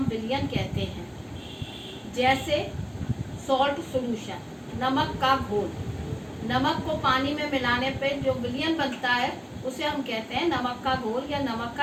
विलयन कहते हैं। जैसे सॉल्ट सॉल्यूशन, नमक का घोल। नमक को पानी में मिलाने पे जो विलयन बनता है उसे हम कहते हैं नमक का घोल या नमक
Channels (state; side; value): identical; both; correlation 1.00